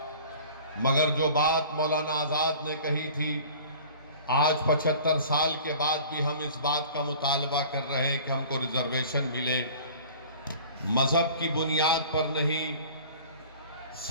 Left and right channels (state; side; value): inverted; both; correlation -0.44